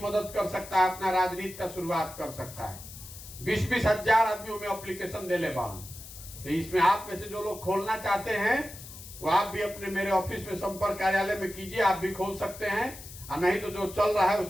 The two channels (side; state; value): left; noise; hiss, 15 dB below the sound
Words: कर सकता है, अपना राजनीति का शुरुआत कर सकता है। 20-20 हजार आदमियों में एप्लीकेशन दे ले बान। तो इसमें आप में से जो लोग खोलना चाहते हैं वो आप भी अपने मेरे ऑफिस में संपर्क कार्यालय में कीजिए, आप भी खोल सकते हैं। और नहीं तो जो चल रहा है